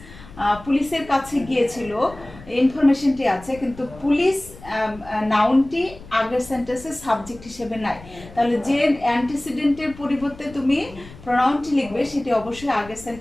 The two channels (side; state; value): left; noise; rumble, 19 dB below the sound